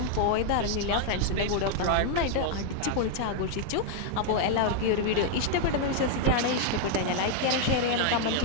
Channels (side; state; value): both; different; correlation 0.00